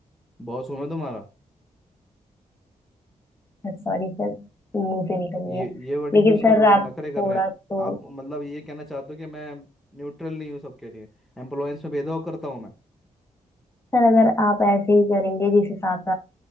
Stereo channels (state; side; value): normal; both; correlation 0.72